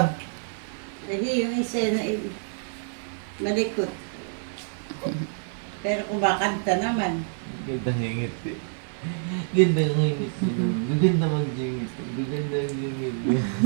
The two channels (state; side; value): silent; left; 60 dB below the other